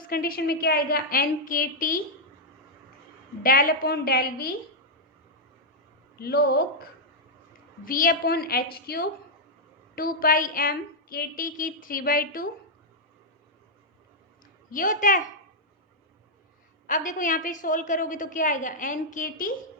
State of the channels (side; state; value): both; normal; correlation -0.05